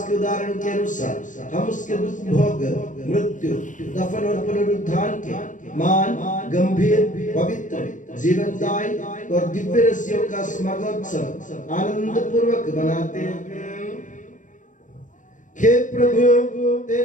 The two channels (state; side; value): late; right; 0.37 ms